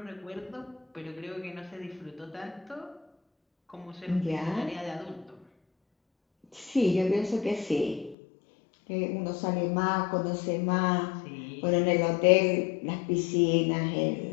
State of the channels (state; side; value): drops out; right; at 8.2 s